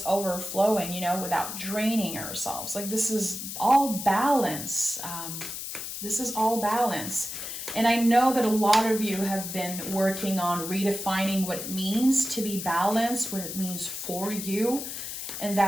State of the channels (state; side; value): noise; left; hiss, 7 dB below the sound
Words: overflowing, you know, without draining ourselves? Like, this is all balance. This is all balance. And I know that a lot of you have been working on redefining what it means to be balanced, what it means for you, and